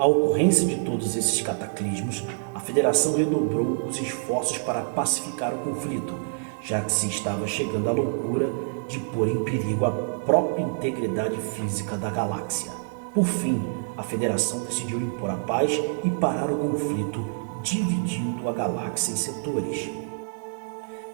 ocorrência de todos esses cataclismos, a Federação redobrou os esforços para pacificar o conflito, já que se estava chegando à loucura de pôr em perigo a própria integridade física da galáxia. Por fim, a Federação decidiu impor a paz e parar o conflito, dividindo a galáxia em setores.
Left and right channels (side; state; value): left; silent; digital silence